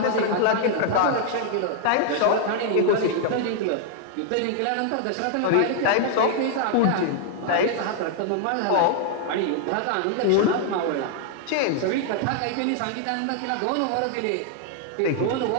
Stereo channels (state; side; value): different; both; correlation 0.00